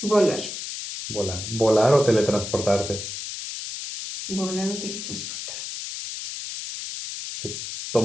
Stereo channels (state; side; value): noise; left; hiss, 7 dB below the sound